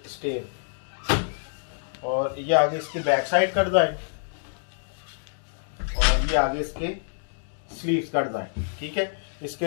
स्टेन, और ये आगे इसकी बैक साइड का डिज़ाइन, और ये आगे इसके स्लीव्स का डिज़ाइन। ठीक है,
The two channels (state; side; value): silent; right; digital silence